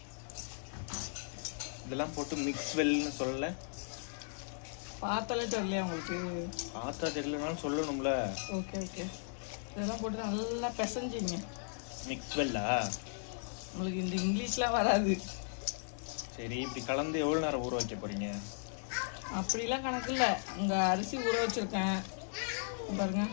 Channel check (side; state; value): right; silent; digital silence